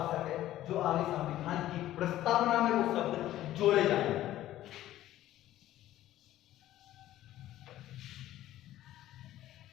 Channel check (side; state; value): right; quieter; 13.9 dB